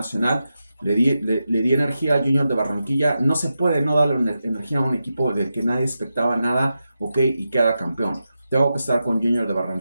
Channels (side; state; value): both; inverted; correlation -0.89